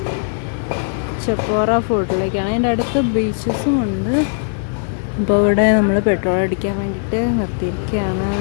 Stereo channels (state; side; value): silent; right; digital silence